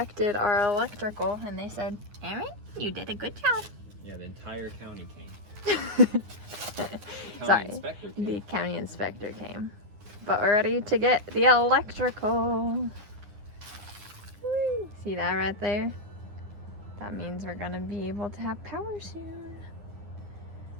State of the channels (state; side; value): late; left; 9.7 ms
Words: our electrical, and they said, Aaron, you did a good job. Yeah, the entire county came. The county Sorry, inspector came. the county inspector came. But we're ready to get the electrical. Woo. See that right there? That means we're gonna be able to have power soon.